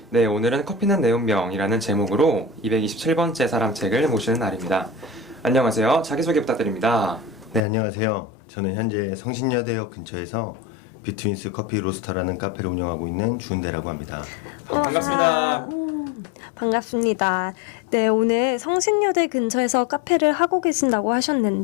네, 오늘은 커피는 내 운명이라는 제목으로 227번째 사람책을 모시는 날입니다. 안녕하세요. 자기소개 부탁드립니다. 네, 안녕하세요. 저는 현재 성신여대역 근처에서 비트윈스 커피 로스터라는 카페를 운영하고 있는 주은대라고 합니다. 반갑습니다. 반갑습니다. 네, 오늘 성신여대 근처에서 카페를 하고 계신다고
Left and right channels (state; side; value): drops out; right; at 7.6 s